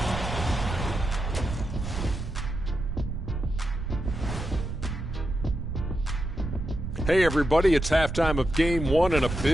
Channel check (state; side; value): noise; right; rumble, 5 dB below the sound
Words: Hey, everybody, it's halftime of game 1 and a